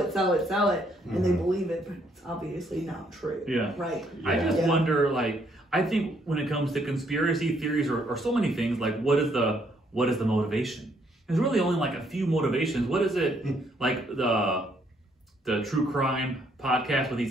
and they believe it, but it's obviously not true. Yeah. Right. Yeah. I just wonder, like, I think when it comes to conspiracy theories or so many things, like, what is the motivation? There's really only like a few motivations. What is it? Like the true crime podcast with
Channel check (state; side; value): normal; both; correlation 0.70